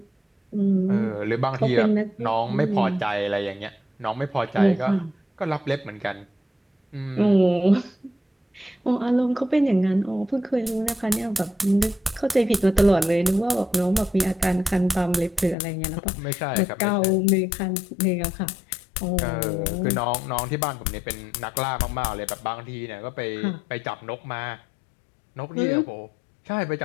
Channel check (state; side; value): drops out; right; at 15.6 s